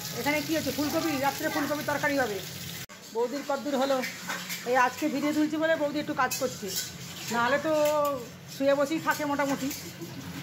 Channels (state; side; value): identical; both; correlation 1.00